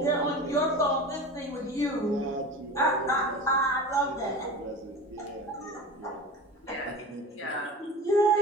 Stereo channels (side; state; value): both; normal; correlation 0.32